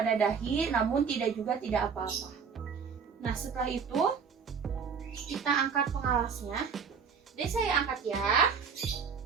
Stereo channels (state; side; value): quieter; left; 6.1 dB